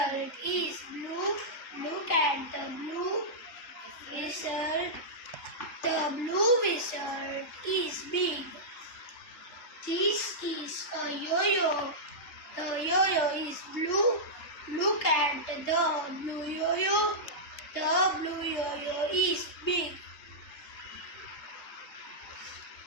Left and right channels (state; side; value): late; right; 3.8 ms